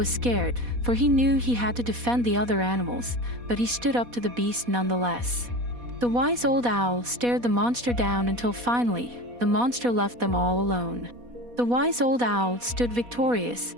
scared, for he knew he had to defend the other animals, but he stood up to the beast nonetheless. The wise old owl stared the monster down until finally, the monster left them all alone. The wise old owl stood victorious,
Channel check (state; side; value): late; left; 4.1 ms